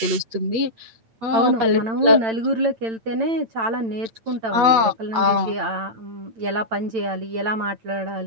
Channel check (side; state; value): left; late; 8.3 ms